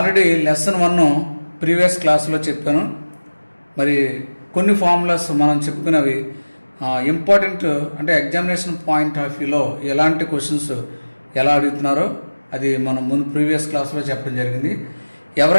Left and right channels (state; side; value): inverted; both; correlation -1.00